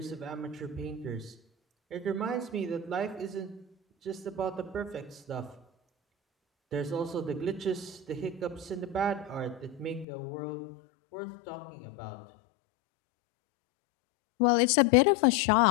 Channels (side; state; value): right; drops out; at 10.1 s